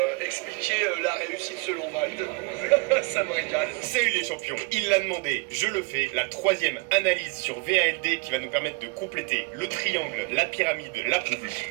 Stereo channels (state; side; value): quieter; left; 29.1 dB